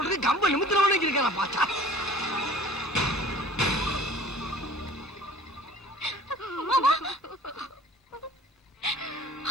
கம்ப நிமித்திரவனே இருக்கான் பாச்சா.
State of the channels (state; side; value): normal; both; correlation 0.48